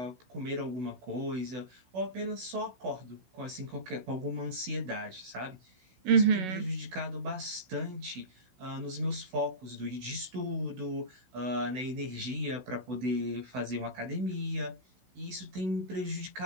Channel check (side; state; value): left; late; 16 ms